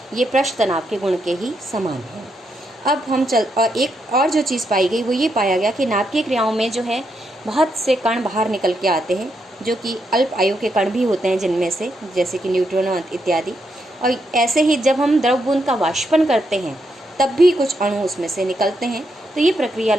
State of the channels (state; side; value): normal; both; correlation 0.80